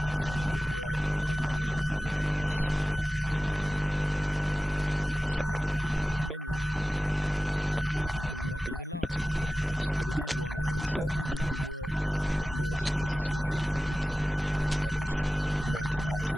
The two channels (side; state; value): both; normal; correlation 0.96